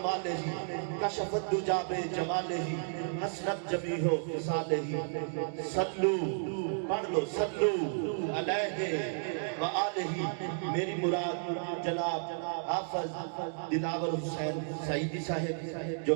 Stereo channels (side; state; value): left; silent; digital silence